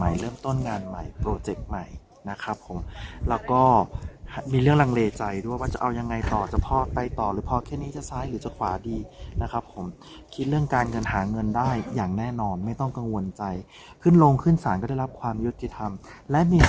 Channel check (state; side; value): identical; both; correlation 1.00